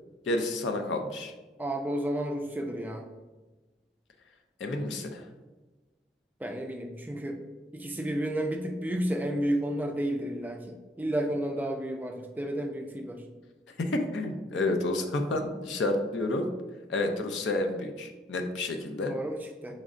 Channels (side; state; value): both; normal; correlation 0.66